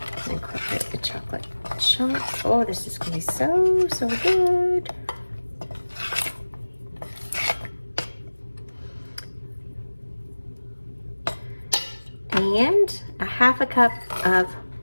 Incorporate the chocolate chunks. Oh, this is going to be so, so good. And a half a cup of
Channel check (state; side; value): inverted; both; correlation -1.00